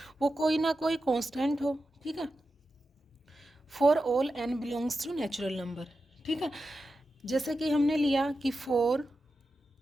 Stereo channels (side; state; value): both; normal; correlation 0.91